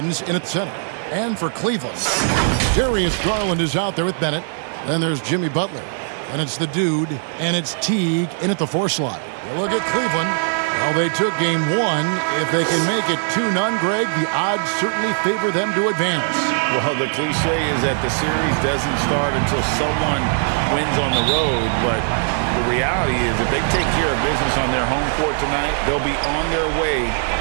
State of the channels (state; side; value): silent; left; digital silence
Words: in at center. And for Cleveland, Darius Garland is out there with Bennett. Then there's Jimmy Butler. And it's the dude. And it's Teague in at the 4 slot. You look at Cleveland. Well, they took game 1. If they can make it 2-0, Greg, the odds certainly favor them to advance. Well, the cliche is that the series doesn't start until someone wins on the road, but the reality is if they take care of business on their home court tonight, they'll be on their way